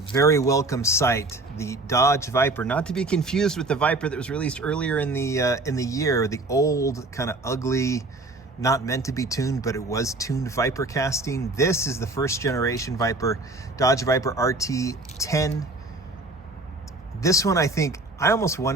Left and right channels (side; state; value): left; quieter; 3.0 dB